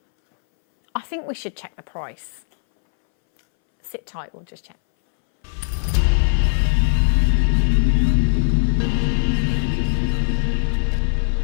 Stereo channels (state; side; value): silent; right; 63 dB below the other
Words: I think we should check the price. Sit tight, we'll just check.